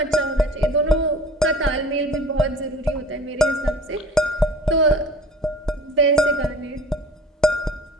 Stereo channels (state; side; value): normal; both; correlation 0.43